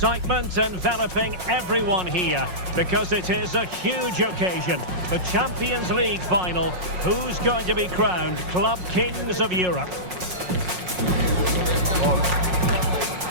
enveloping everyone here because it is a huge occasion. The Champions League final. Who's going to be crowned Club Kings of Europe?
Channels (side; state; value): left; late; 5.5 ms